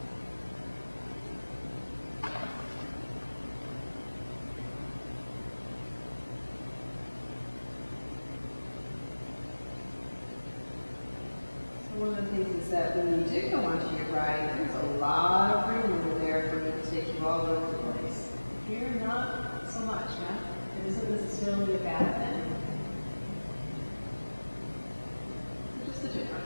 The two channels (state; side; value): inverted; both; correlation -1.00